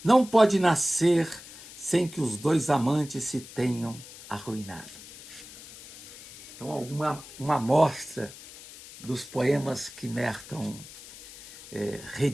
não pode nascer sem que os 2 amantes se tenham arruinado. Então, uma amostra dos poemas que Merton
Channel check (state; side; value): noise; left; hiss, 17 dB below the sound